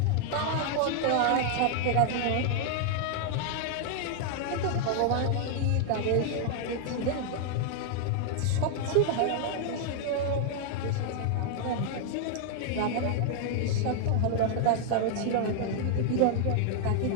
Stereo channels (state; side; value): different; both; correlation 0.00